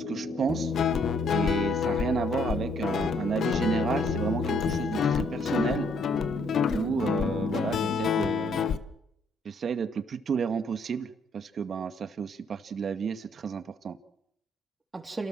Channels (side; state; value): both; normal; correlation 0.67